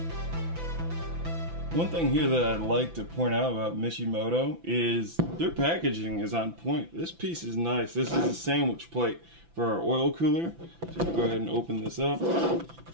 One thing here that I'd like to point out about Mishimoto is their packaging is on point. This piece is nice. This is a sandwich plate for our oil cooler. So we'll go ahead and open this up.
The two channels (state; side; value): late; left; 5.9 ms